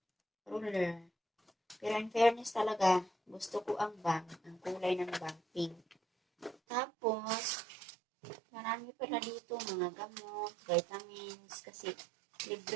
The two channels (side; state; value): left; drops out; at 6.6 s